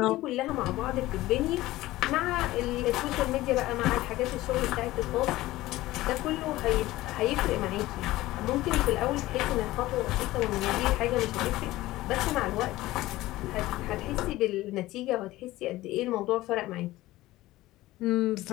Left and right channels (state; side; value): quieter; right; 17.3 dB